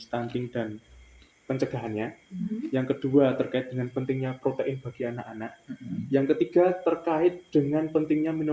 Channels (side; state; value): both; identical; correlation 1.00